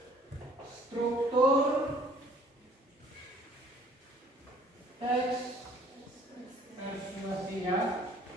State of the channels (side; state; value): both; normal; correlation 0.57